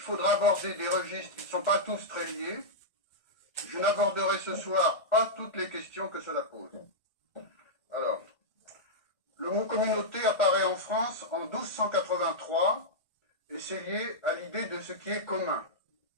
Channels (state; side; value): late; right; 1.4 ms